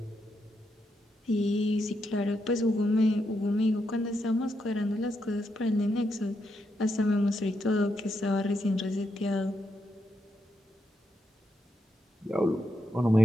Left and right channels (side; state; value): both; normal; correlation 0.81